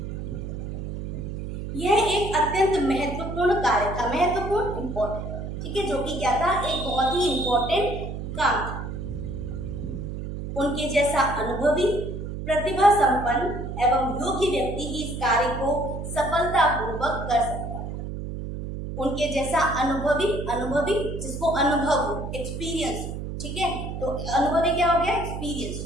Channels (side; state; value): right; noise; hum, 6 dB below the sound